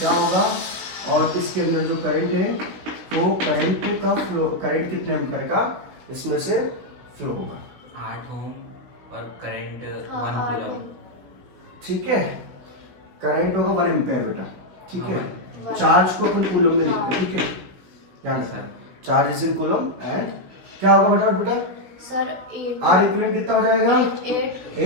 होगा, और इसके अंदर जो करंट है तो करंट का फ्लो, करंट कितने एम्पीयर का इसमें से फ्लो होगा, 8 ओम और करंट 1 कूलम, ठीक है। करंट होगा 1 एम्पीयर बेटा, ठीक हाँ, है। चार्ज को अपन कूलम में लिखते हैं, ठीक है, ध्यान sir, charge is in coulomb and क्या होगा फटाफट बेटा सर, R इक्विवेलेंट कितना हो जाएगा,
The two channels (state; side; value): late; left; 16 ms